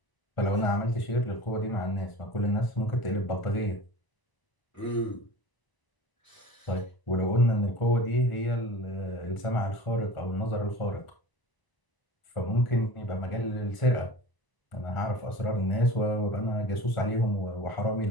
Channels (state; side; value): late; right; 1.0 ms